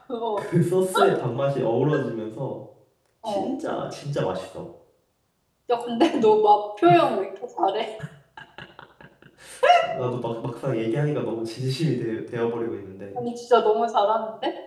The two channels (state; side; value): identical; both; correlation 1.00